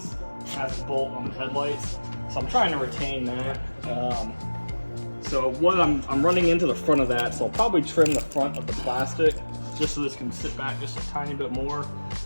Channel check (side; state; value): both; inverted; correlation -1.00